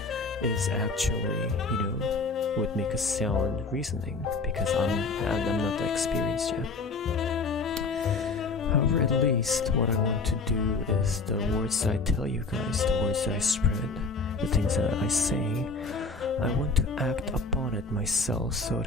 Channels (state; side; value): quieter; right; 4.0 dB